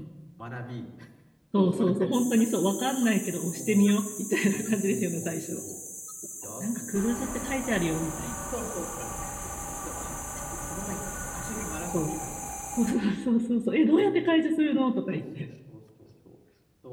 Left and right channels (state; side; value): identical; both; correlation 1.00